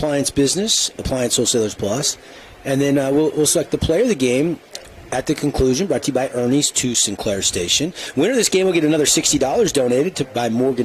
business, Appliance Wholesalers Plus. And then we'll select the player of the game at the conclusion, brought to you by Ernie's 2 Sinclair Station. Winner of this game will get another $60 donated by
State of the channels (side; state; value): both; identical; correlation 1.00